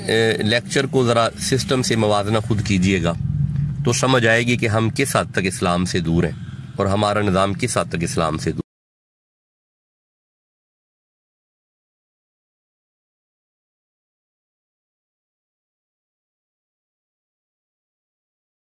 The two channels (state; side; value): identical; both; correlation 1.00